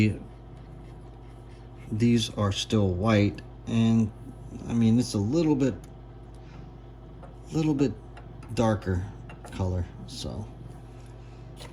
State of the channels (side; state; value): both; identical; correlation 1.00